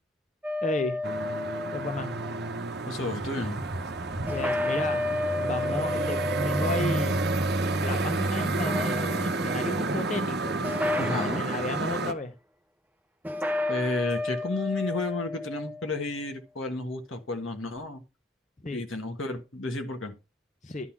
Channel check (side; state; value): both; normal; correlation 0.59